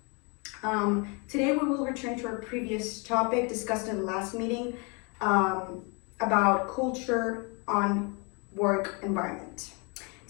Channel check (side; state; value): right; quieter; 32.3 dB